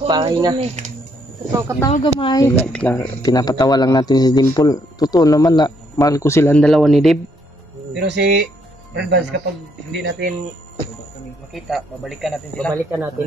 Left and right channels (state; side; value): normal; both; correlation 0.72